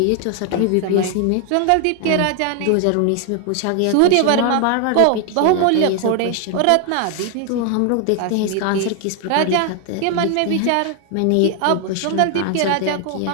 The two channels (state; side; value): different; both; correlation 0.00